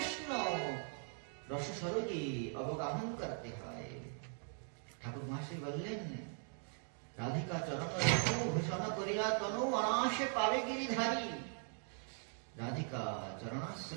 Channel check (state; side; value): silent; left; 51 dB below the other